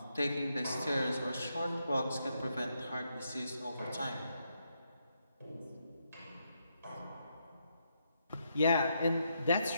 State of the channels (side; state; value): both; inverted; correlation -0.80